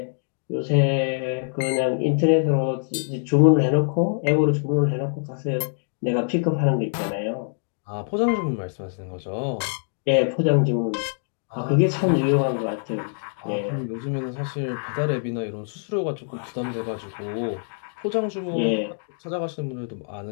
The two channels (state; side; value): silent; right; digital silence